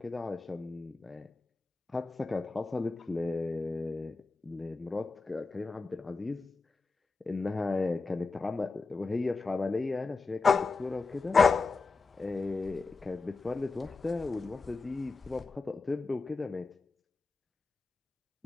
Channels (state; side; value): quieter; right; 4.0 dB